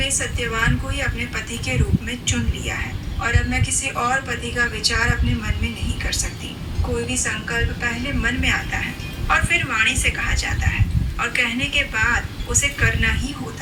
सत्यवान को ही अपने पति के रूप में चुन लिया है और अब मैं किसी और पति का विचार अपने मन में नहीं कर सकती। कोई भी संकल्प पहले मन में आता है और फिर वाणी से कहा जाता है और कहने के बाद उसे करना ही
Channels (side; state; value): both; identical; correlation 1.00